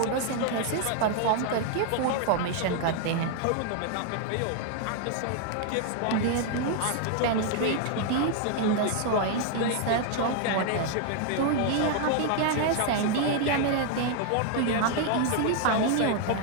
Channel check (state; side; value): different; both; correlation 0.00